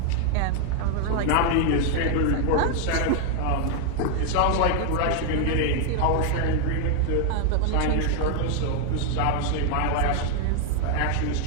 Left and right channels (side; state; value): both; different; correlation 0.00